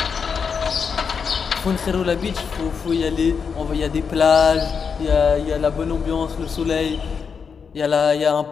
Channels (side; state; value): right; quieter; 6.1 dB